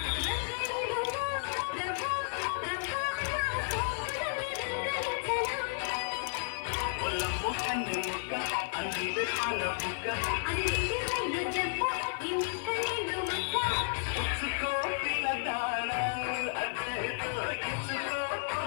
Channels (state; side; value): silent; right; digital silence